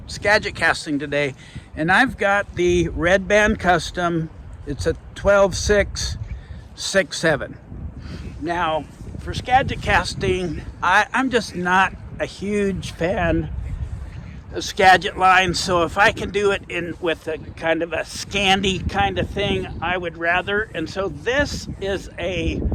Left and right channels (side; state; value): both; identical; correlation 1.00